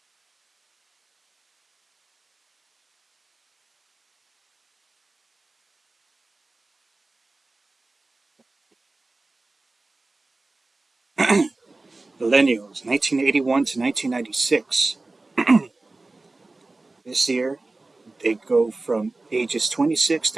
Millennials, 1981 to 1996. This year, They go from ages 26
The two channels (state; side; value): quieter; left; 3.2 dB